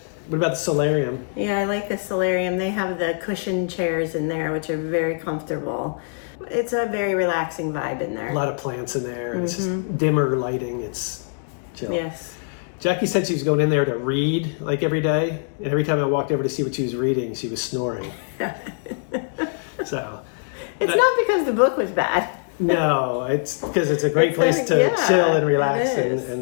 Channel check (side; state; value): right; silent; digital silence